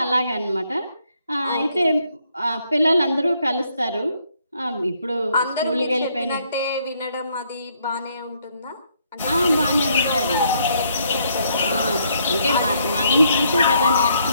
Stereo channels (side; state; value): both; inverted; correlation -0.71